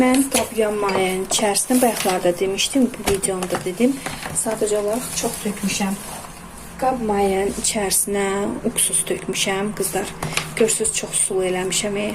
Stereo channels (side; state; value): both; identical; correlation 1.00